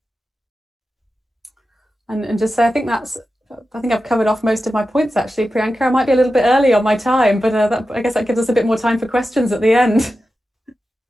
And just say, I think I've covered off most of my points, actually, Priyanka. I might be a little bit early on my time, but I guess that gives us a bit more time for questions at the end.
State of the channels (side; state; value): both; normal; correlation 0.92